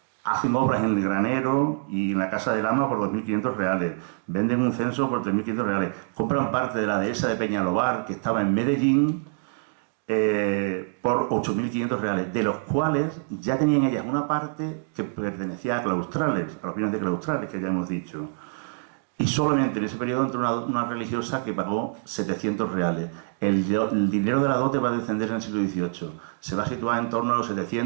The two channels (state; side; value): silent; left; digital silence